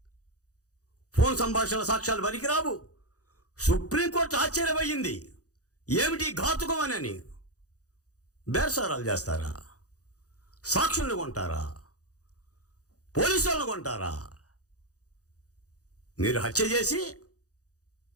ఫోన్ సంభాషణల సాక్ష్యాలు పనికిరావు. సుప్రీంకోర్టు ఆశ్చర్యపోయింది, ఏమిటి ఘాతుకం అని. బేరసారాలు చేస్తారా? సాక్షులను కొంటారా? పోలీసు వాళ్ళను కొంటారా? మీరు హత్య చేసి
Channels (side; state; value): right; late; 0.67 ms